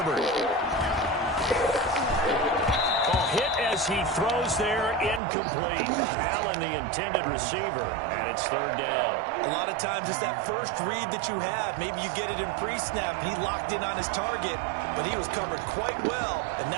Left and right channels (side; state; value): left; drops out; at 5.2 s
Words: Hit as he throws there, incomplete. Allen, the intended receiver, and it's 3rd down. A lot of times it's that first read that you have. Maybe you get it in pre-snap. He locked in on his target, but he was covered quite well, and